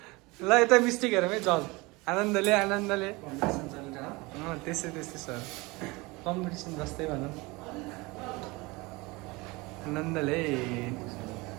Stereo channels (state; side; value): quieter; left; 24.1 dB